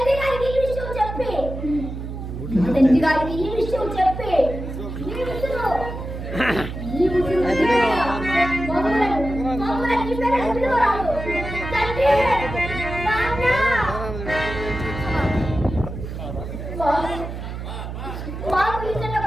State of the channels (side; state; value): right; noise; hum, 7 dB below the sound